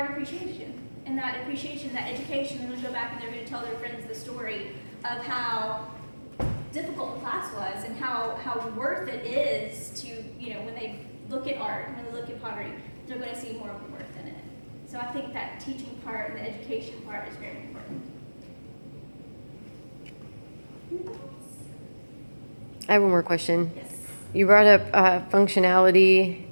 appreciation. And that appreciation, that education, and they'll go back and they're going to tell their friends the story of how difficult the class was and how worth it is to, when they look at art and when they look at pottery, they're going to see more of the worth in it. So I think that teaching part and the education part is very important. I have one more question. Yes. You brought up functionality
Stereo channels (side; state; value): both; inverted; correlation -1.00